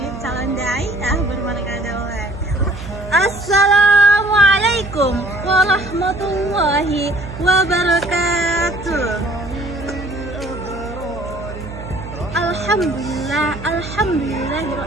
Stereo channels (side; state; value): right; noise; hum, 12 dB below the sound